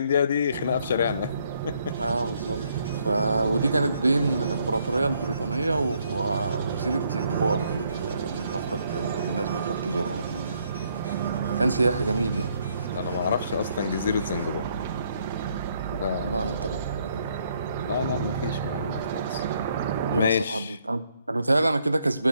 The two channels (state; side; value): inverted; both; correlation -0.70